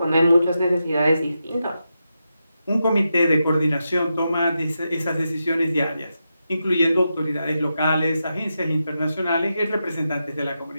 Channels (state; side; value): inverted; both; correlation -0.87